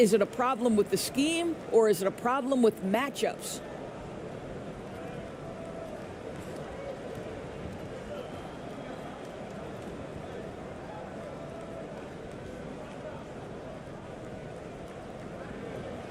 a problem with the scheme or is it a problem with matchups?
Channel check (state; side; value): identical; both; correlation 1.00